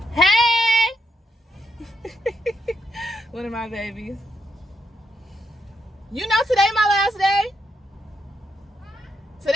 Hey! One of my babies. Today my last day?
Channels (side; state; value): both; normal; correlation 0.81